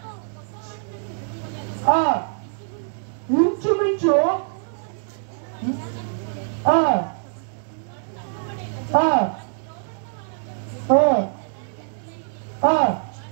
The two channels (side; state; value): left; silent; digital silence